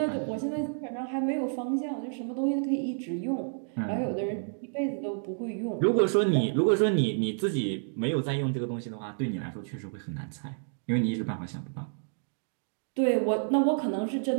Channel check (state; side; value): silent; left; digital silence